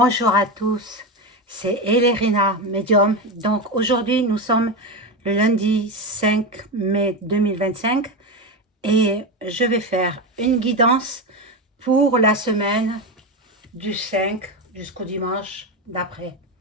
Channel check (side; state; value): both; normal; correlation 0.16